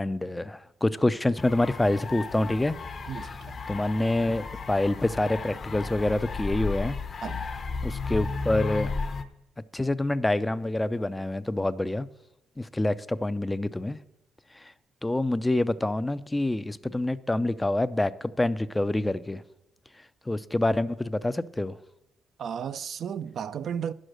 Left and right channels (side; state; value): both; normal; correlation 0.97